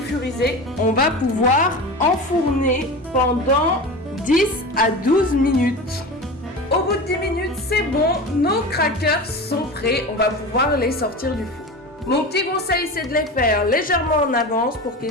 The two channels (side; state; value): both; normal; correlation 0.29